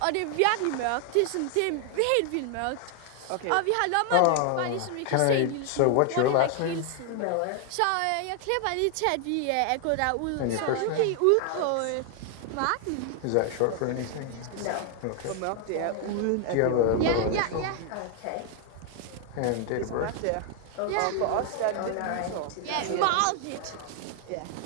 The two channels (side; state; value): both; different; correlation 0.00